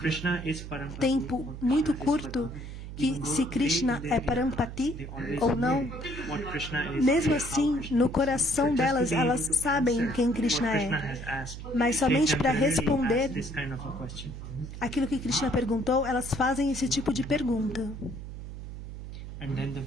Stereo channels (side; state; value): right; noise; hum, 10 dB below the sound